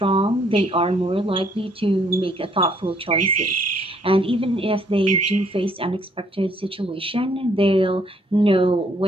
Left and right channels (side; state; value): both; normal; correlation 0.66